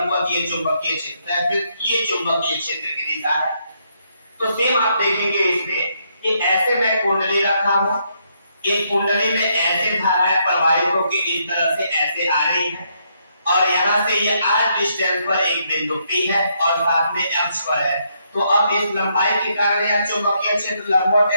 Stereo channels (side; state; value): both; inverted; correlation -0.75